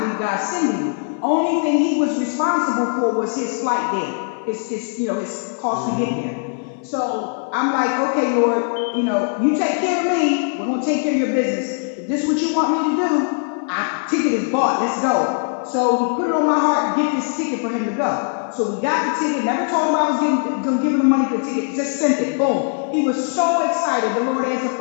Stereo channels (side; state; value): right; silent; 56 dB below the other